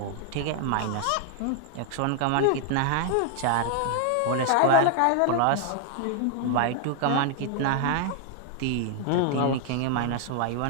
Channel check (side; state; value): both; different; correlation 0.00